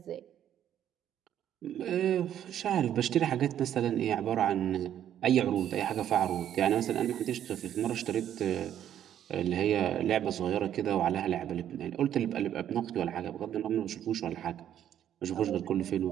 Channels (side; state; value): left; quieter; 10.5 dB